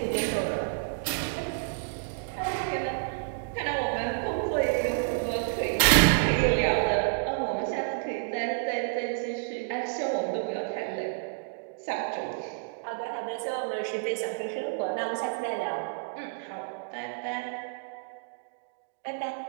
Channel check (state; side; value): silent; left; digital silence